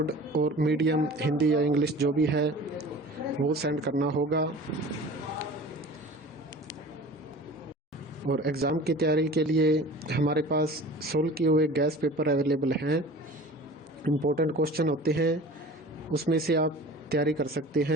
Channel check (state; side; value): normal; both; correlation 0.41